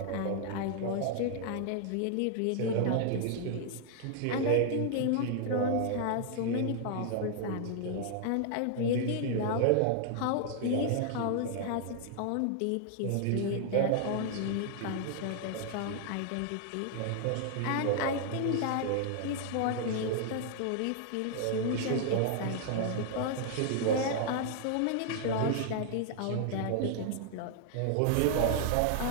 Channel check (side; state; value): both; different; correlation -0.01